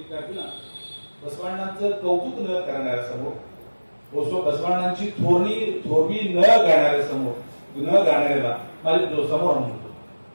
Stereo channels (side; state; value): both; inverted; correlation -1.00